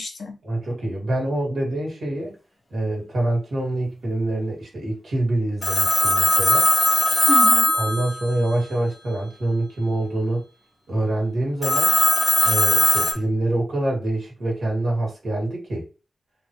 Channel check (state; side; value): normal; both; correlation 0.95